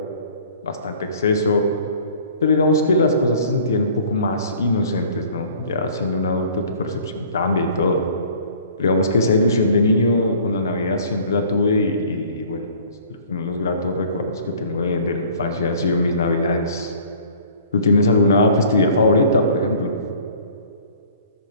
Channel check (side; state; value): both; inverted; correlation -0.51